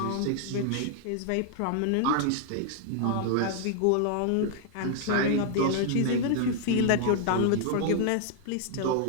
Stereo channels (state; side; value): different; both; correlation -0.01